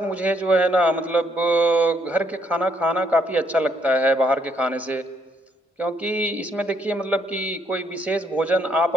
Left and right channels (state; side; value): normal; both; correlation 0.71